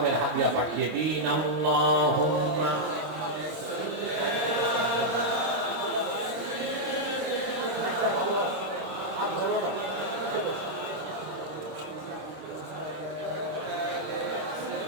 হাদিয়া পাঠিয়ে দিন আল্লাহুম্মা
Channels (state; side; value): late; left; 26 ms